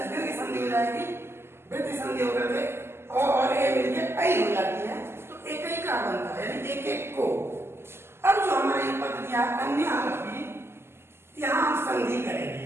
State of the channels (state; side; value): late; left; 0.12 ms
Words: दीर्घ संधि हो जाएगी, वृद्धि संधि होकर के और ए मिलके ऐ हो जाती है, तो एकैका बनता है, यानी एक एक को। अब जो हमारा ये पद दिया अन्य आरोपी, यहाँ हम संधि